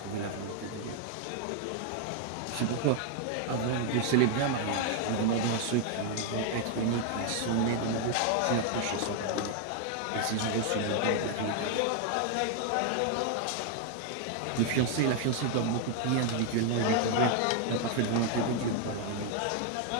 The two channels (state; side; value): different; both; correlation 0.00